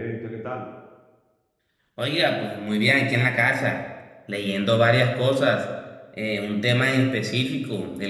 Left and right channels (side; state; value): both; identical; correlation 1.00